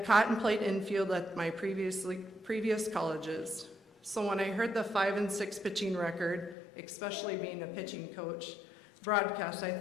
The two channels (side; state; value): right; drops out; at 6.6 s